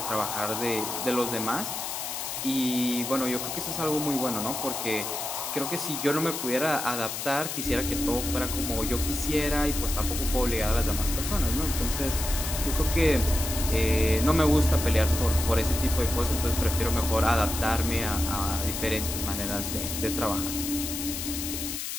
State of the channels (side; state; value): left; noise; hiss, 5 dB below the sound